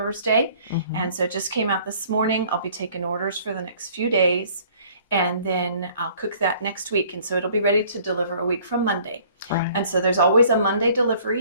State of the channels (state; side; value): inverted; both; correlation -0.55